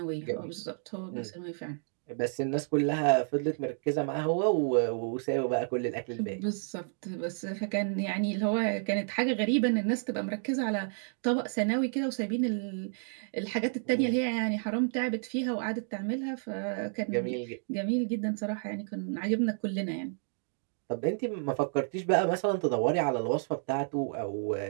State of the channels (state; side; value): silent; left; digital silence